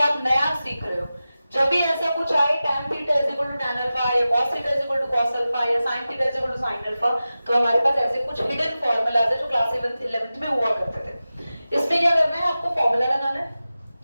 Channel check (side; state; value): both; inverted; correlation -0.95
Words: नया सीख रहे हो। जब भी ऐसा कुछ आए tan theta is equal to tan alpha या cos theta is equal to cos alpha या sin theta is equal to sin alpha, तो हमारे पास ऐसे कुछ हिडन फॉर्मूलाज है जो क्लास 11th में हुआ करते थे। इसमें क्या करना है? आपको फॉर्मूला लगाना है।